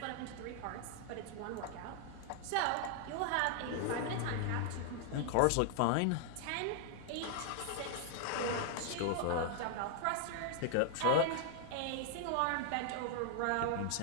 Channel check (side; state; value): both; different; correlation 0.00